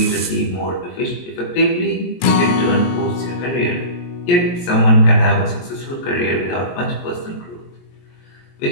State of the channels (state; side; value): late; right; 22 ms